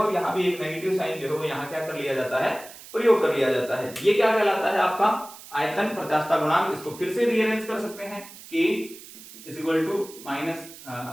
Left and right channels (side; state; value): right; noise; hiss, 17 dB below the sound